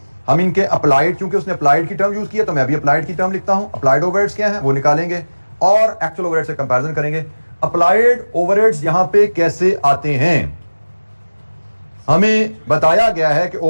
हम इनके अप्लाइड, क्योंकि उसने अप्लाइड की टर्म यूज किया तो मैं भी अप्लाइड की टर्म लिखता हूं। अप्लाइड ओवरहेड्स क्या है वो निकालेंगे और एक्चुअल ओवरहेड से कंपैरिजन करेंगे। अप्लाइड ओवरहेड्स यहां पे कैसे आते हैं? हमें बताया गया है कि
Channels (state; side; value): inverted; both; correlation -1.00